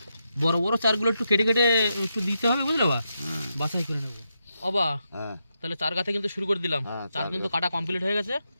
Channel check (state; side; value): inverted; both; correlation -0.84